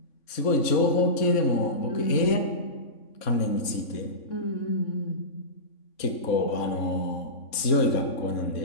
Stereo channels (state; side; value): late; right; 3.5 ms